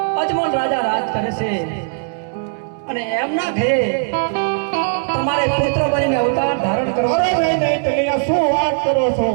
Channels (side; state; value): left; silent; 67 dB below the other